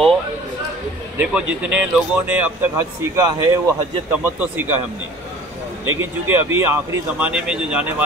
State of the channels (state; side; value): normal; both; correlation 0.46